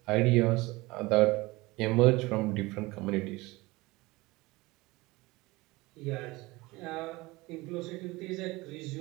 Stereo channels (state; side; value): quieter; left; 21.8 dB